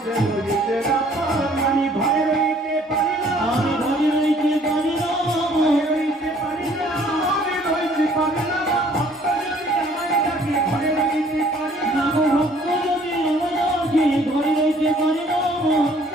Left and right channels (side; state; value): both; normal; correlation 0.58